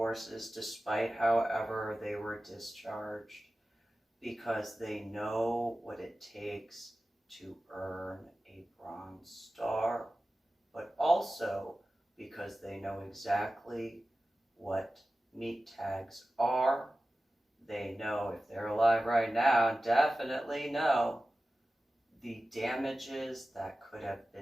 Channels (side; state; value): both; normal; correlation 0.95